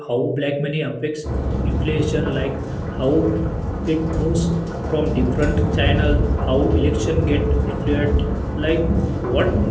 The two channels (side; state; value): both; identical; correlation 1.00